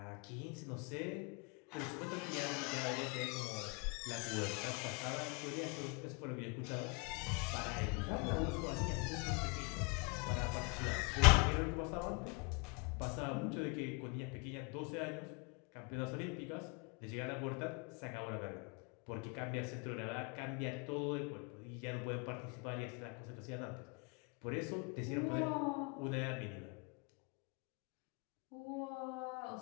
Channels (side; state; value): right; quieter; 32.1 dB